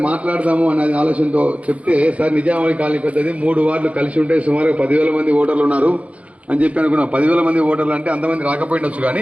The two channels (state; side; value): late; left; 0.065 ms